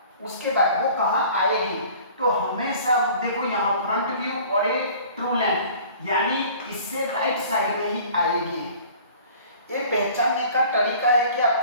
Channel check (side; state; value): both; inverted; correlation -0.47